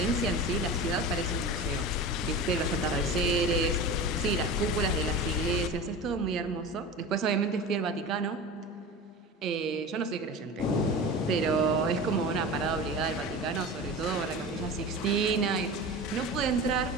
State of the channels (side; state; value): both; normal; correlation 0.31